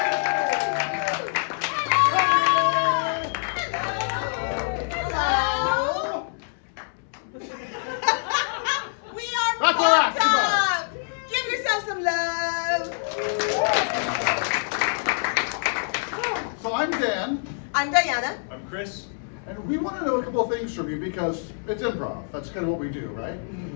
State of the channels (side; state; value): right; silent; 61 dB below the other